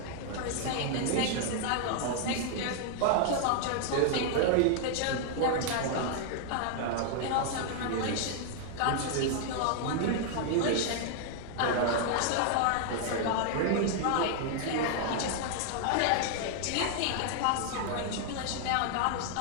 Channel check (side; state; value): both; different; correlation 0.00